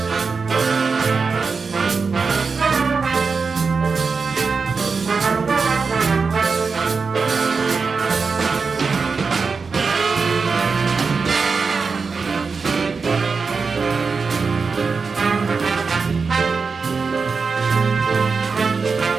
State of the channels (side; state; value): left; quieter; 4.9 dB